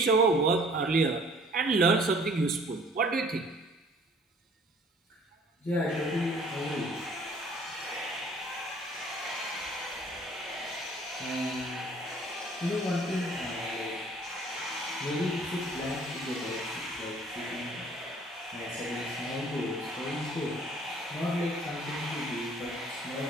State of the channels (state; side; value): normal; both; correlation 0.54